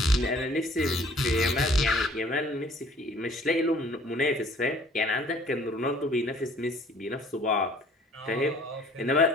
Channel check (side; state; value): both; normal; correlation 0.55